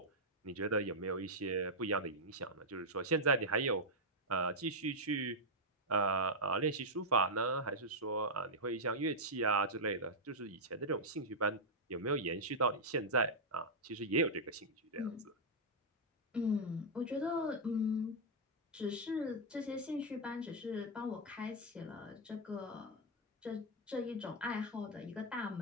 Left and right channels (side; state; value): both; normal; correlation -0.05